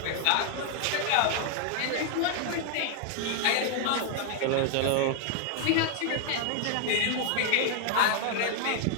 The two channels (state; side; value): different; both; correlation 0.00